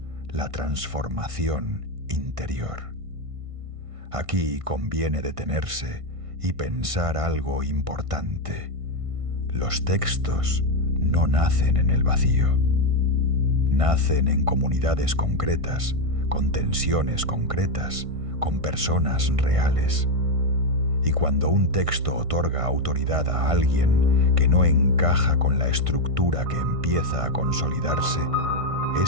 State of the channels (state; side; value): late; left; 1.5 ms